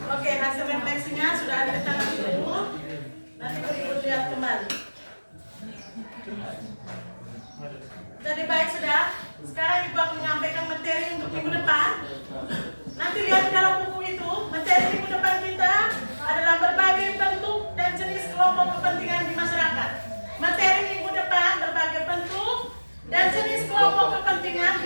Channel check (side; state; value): both; inverted; correlation -1.00